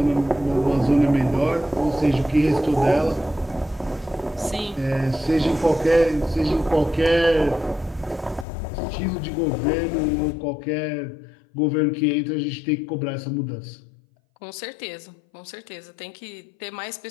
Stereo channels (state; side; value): drops out; right; at 8.5 s